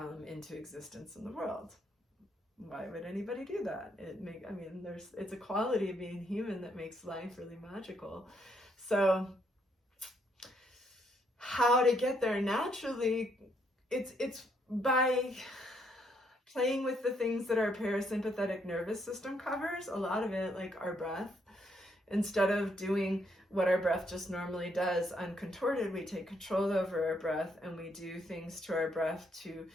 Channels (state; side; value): normal; both; correlation 0.73